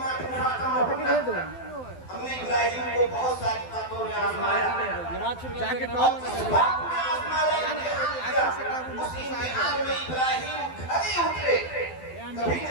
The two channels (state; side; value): late; right; 12 ms